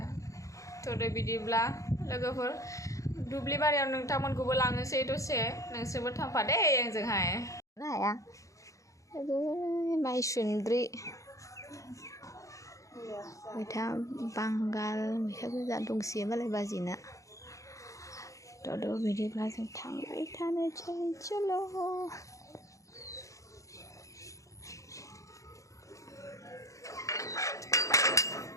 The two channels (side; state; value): right; late; 0.15 ms